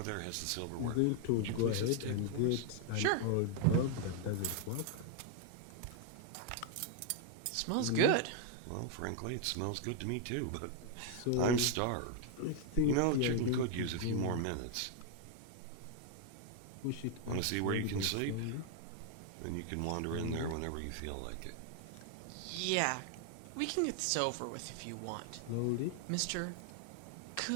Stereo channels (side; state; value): both; different; correlation 0.00